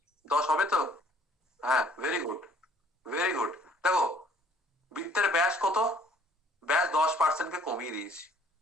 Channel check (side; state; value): both; normal; correlation 0.58